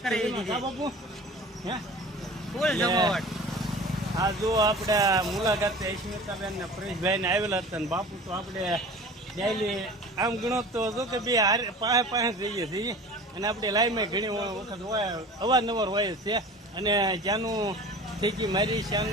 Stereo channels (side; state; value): both; normal; correlation 0.40